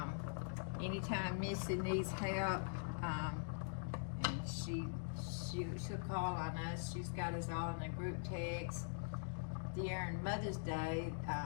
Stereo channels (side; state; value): right; silent; digital silence